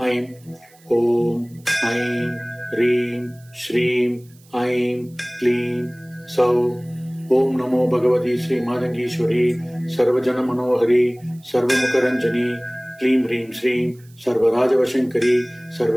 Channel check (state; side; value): noise; right; hiss, 29 dB below the sound